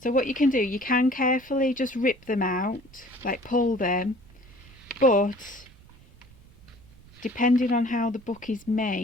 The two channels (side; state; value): right; noise; rumble, 24 dB below the sound